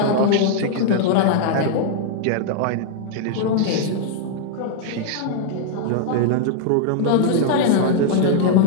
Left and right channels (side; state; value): both; different; correlation -0.01